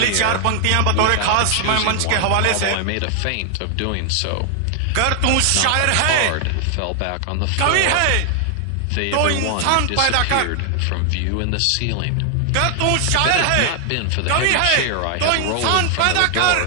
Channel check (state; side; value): different; both; correlation 0.00